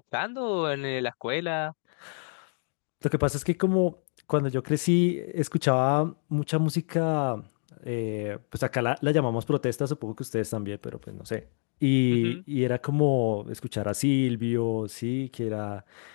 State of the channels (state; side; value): silent; right; 56 dB below the other